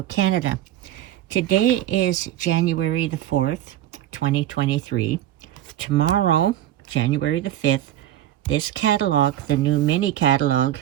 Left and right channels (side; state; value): left; quieter; 12.6 dB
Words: Canada. Today is January the 4th, 2023. Tomorrow, January the 5th, this catalog, the new mini catalog,